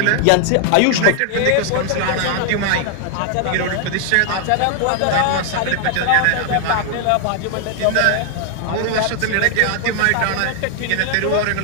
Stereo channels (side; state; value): both; different; correlation 0.00